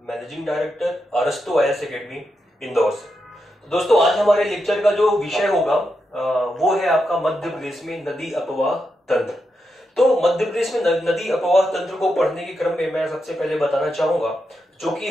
managing director अरस्तु आईएएस एकेडमी इंदौर से। तो दोस्तों, आज हमारे लेक्चर का जो विषय होगा वो है आपका मध्य प्रदेश में नदी अपवाह तंत्र। तो मध्य प्रदेश में नदी अपवाह तंत्र को पढ़ने के क्रम में मैं सबसे पहले बताना चाहूंगा, जो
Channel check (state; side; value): normal; both; correlation 0.85